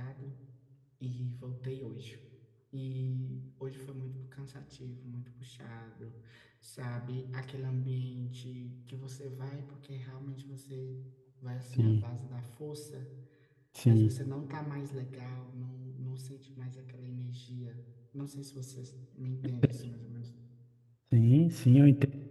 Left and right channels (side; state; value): both; identical; correlation 1.00